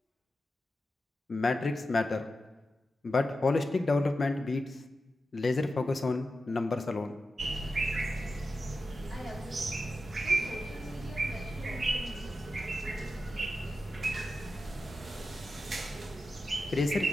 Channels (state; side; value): normal; both; correlation 0.91